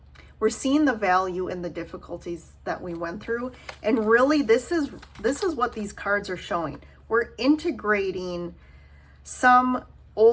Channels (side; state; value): both; identical; correlation 1.00